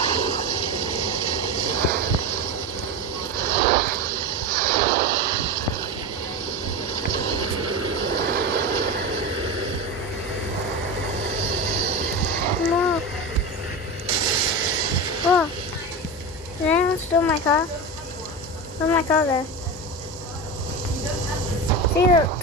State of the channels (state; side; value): normal; both; correlation 0.22